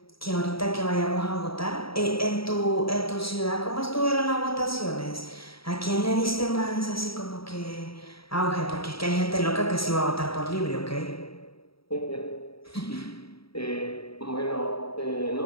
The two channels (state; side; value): late; right; 0.75 ms